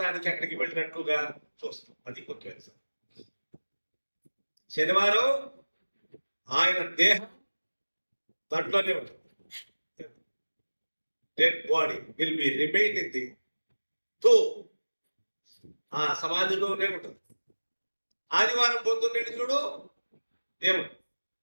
అక్కడికి వెళ్ళినట్లుగా చూస్తాం. అది ముఖ్యం. శనివారం ఆయన దేహం దాంట్లోనే ఉంటుంది. Dead body will be remain in the ఆ సమాధిలోనే ఉంటుంది. ఆదివారం పొద్దున్నే చూడు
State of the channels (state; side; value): inverted; both; correlation -1.00